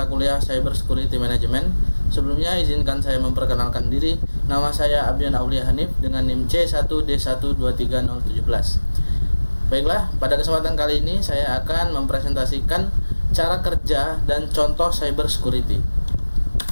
kuliah Cyber Security Management. Sebelumnya izinkan saya memperkenalkan diri. Nama saya Abdian Aulia Hanif dengan NIM C1D123017. Baiklah, pada kesempatan kali ini saya akan mempresentasikan cara kerja dan contoh cyber security.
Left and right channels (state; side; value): inverted; both; correlation -1.00